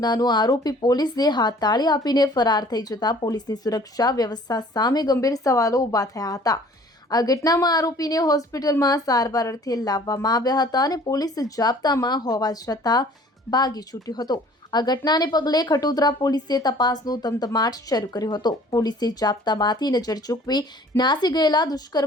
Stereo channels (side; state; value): both; normal; correlation 0.52